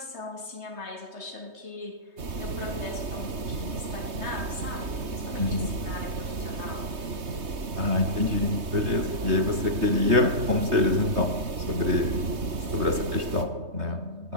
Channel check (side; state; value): left; late; 3.2 ms